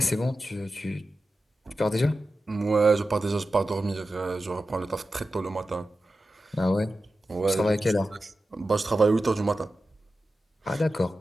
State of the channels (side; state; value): both; normal; correlation 0.93